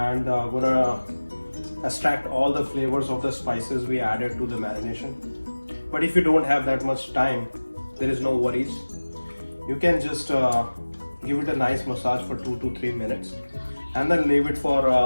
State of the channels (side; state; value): both; inverted; correlation -1.00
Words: gonna extract all the flavors of the spices we added to the marination. But if you don't have that much time, there is no worries. You can just give it a nice massage for 2 to 3 minutes and then leave it for